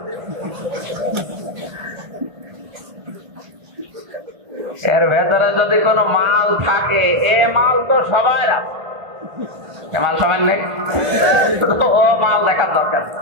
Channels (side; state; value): left; late; 1.4 ms